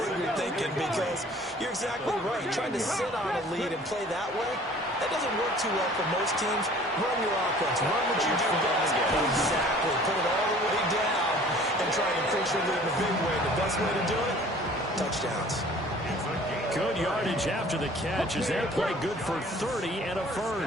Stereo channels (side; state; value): both; normal; correlation 0.50